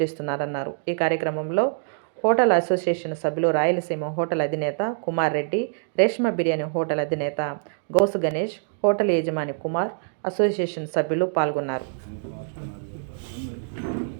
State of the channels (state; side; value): silent; left; digital silence